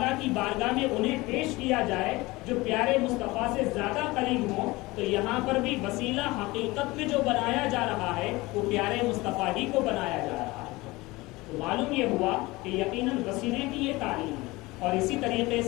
کی بارگاہ میں انہیں پیش کیا جائے جو پیارے مصطفیٰ سے زیادہ قریب ہوں، تو یہاں پر بھی وسیلہ حقیقت میں جو بنایا جا رہا ہے وہ پیارے مصطفیٰ ہی کو بنایا جا رہا ہے۔ تو معلوم یہ ہوا کہ یقیناً وسیلے کی یہ تعلیم ہے۔ اور اسی طریقے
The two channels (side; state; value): right; quieter; 21.4 dB